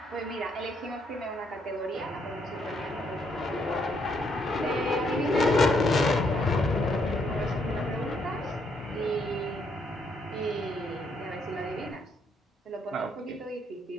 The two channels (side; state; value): both; normal; correlation 0.73